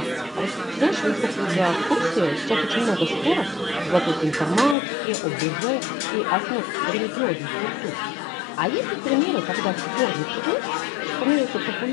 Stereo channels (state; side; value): drops out; right; at 4.8 s